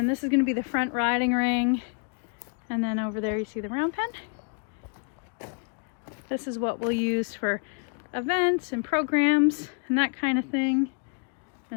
this is going to be the front riding ring, and then over there you see the round pen. This is what we'll use for events and programs and that kind of thing.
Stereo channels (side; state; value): right; quieter; 38.6 dB